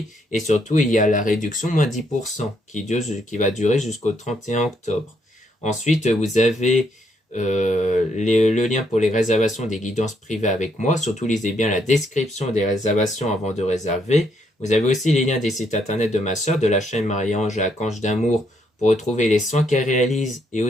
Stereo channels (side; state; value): both; normal; correlation 0.73